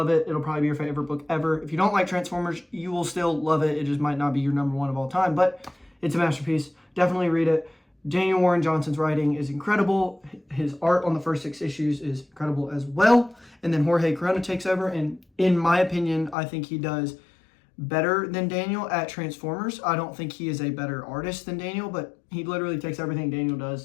it. It'll probably be your favorite book ever. If you don't like Transformers, you will still love it. It just might not be your number 1 of all time, but it's a masterpiece. Definitely read it. Daniel Warren Johnson's writing is incredible. His art on the first 6 issues is incredible as well. And then Jorge Corona takes over, and in my opinion, I think he does better than Daniel at Transformers. I don't think he is a better artist than Daniel, but he literally takes everything Daniel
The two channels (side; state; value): right; drops out; at 16.4 s